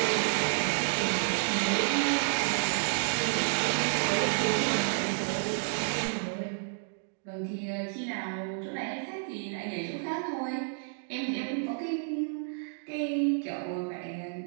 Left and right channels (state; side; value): silent; left; digital silence